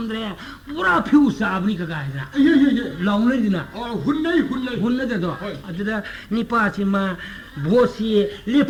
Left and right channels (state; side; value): identical; both; correlation 1.00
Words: पूरा फ्यूस आबनी का गायना लाउनी दिना हुन्नै दो अदना निपाचिमा बोसी